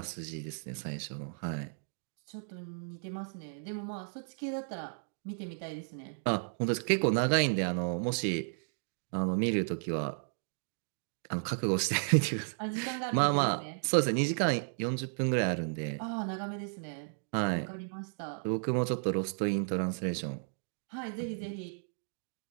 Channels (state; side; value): silent; left; digital silence